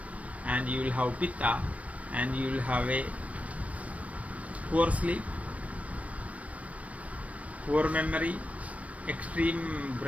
and you will have pitta, and you will have a poor sleep, poor memory, extreme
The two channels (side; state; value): left; late; 0.068 ms